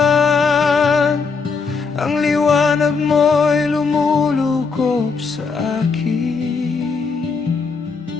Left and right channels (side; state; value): right; quieter; 5.0 dB